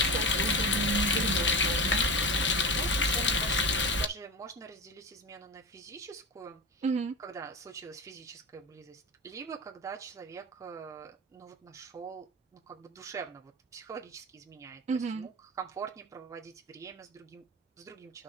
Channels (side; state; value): both; normal; correlation 0.26